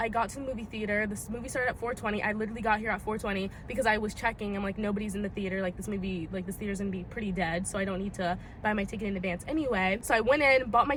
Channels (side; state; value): both; identical; correlation 1.00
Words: got to the movie theater. This movie started at 4:20. I literally got here at 4:20 because I was checking. I'm like, nobody's in the theater. Like this movie, like this theater's gonna be pretty dead, so I don't need to buy my ticket in advance anyway. So I went in, bought my